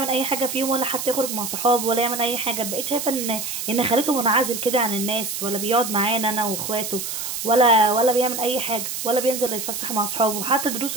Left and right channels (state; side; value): noise; right; hiss, 5 dB below the sound